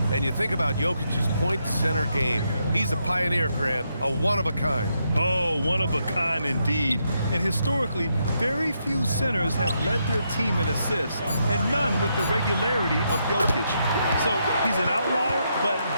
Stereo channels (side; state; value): both; inverted; correlation -0.80